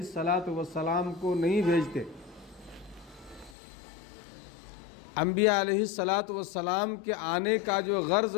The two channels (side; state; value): right; drops out; at 3.6 s